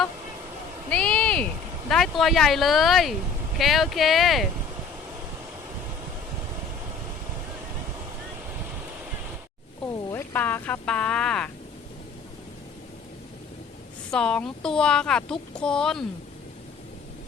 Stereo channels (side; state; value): right; quieter; 5.0 dB